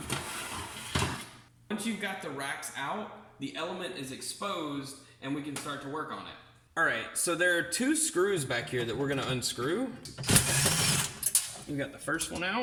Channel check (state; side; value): identical; both; correlation 1.00